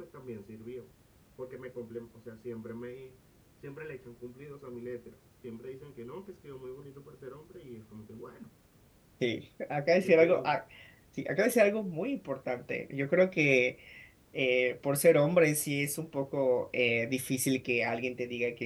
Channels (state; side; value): identical; both; correlation 1.00